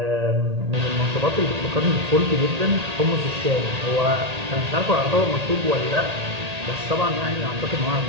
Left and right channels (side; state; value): left; late; 1.8 ms